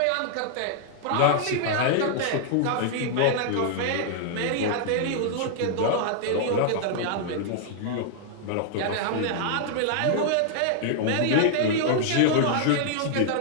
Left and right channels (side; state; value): both; different; correlation -0.01